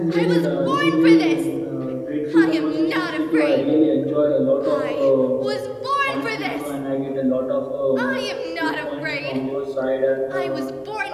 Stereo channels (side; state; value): both; identical; correlation 1.00